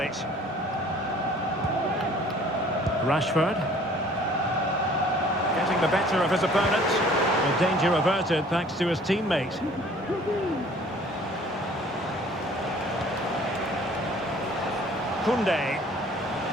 Rashford. Getting the better of his opponent. The danger averted thanks to his teammate. Koundé.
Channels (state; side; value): normal; both; correlation 0.53